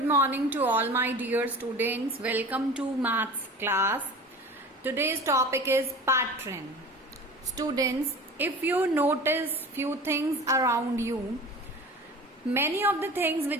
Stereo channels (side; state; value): both; normal; correlation 0.38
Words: morning to all my dear students. Welcome to maths class. Today's topic is pattern. Students, if you notice few things around you, many of the things